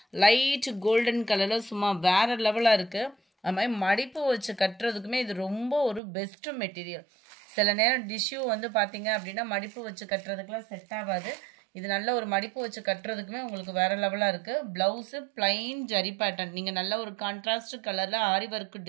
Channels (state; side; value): drops out; left; at 6.0 s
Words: லைட் கோல்டன் கலரில் சும்மா வேறு லெவலாக இருக்குது. அது மாதிரி மடிப்பு வச்சு கட்டுறதுக்குமே இது ரொம்ப ஒரு பெஸ்ட்டு மெட்டீரியல். சில நேரம் டிஷ்யூ வந்து பார்த்தீங்க அப்படின்னா மடிப்பு வச்சு கட்டுறதுக்குலாம் செட் ஆகாது. இது நல்ல ஒரு மடிப்பு வச்சு கட்டுறதுக்குமே உங்களுக்கு வேறு லெவலாக இருக்குது. Blouse plain zari pattern. நீங்கள் நல்ல ஒரு கான்ட்ராஸ்ட் கலரில் ஆரி ஒர்க்